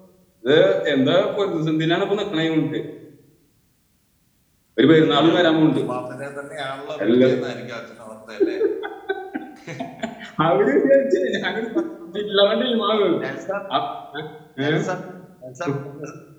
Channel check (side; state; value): both; identical; correlation 1.00